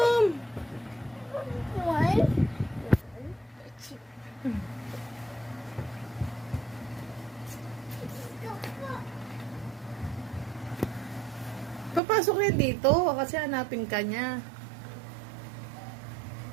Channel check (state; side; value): drops out; left; at 12.0 s